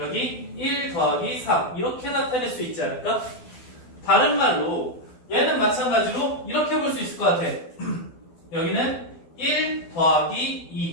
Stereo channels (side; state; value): right; late; 12 ms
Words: 1 더하기 3 이렇게 나타낼 수 있지 않을까? 다른 말로 얘는 마찬가지로 이렇게 볼 수 있을 것 같아. 여기는 1 더하기